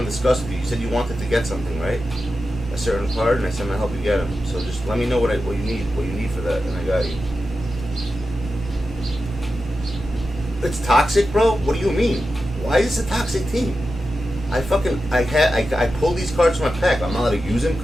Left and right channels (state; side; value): normal; both; correlation 0.91